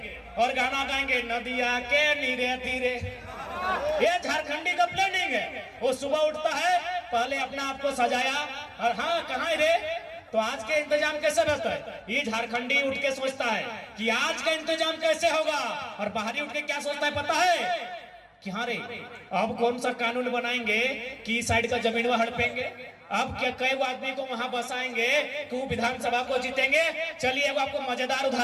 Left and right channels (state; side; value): identical; both; correlation 1.00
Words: और गाना गाएंगे नदिया के नीरे तीरे। ये झारखंडी का प्लानिंग है। वो सुबह उठता है, पहले अपना आप को सजाया और हाँ कहाँ रे, तो आज के इंतजाम कैसे रहता है। ये झारखंडी उठ के सोचता है कि आज का इंतजाम कैसे होगा, और बाहरी उठ के क्या सोचता है पता है कि हाँ रे अब कौन सा कानून बनाएंगे कि इस साइड का जमीन वह हड़पेंगे, अब क्या कई आदमी को वहां बसाएंगे कि वो विधानसभा को जीतेंगे। चलिए अब आपको मजेदार